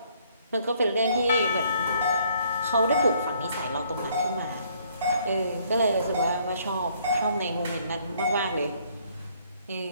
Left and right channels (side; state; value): both; inverted; correlation -0.65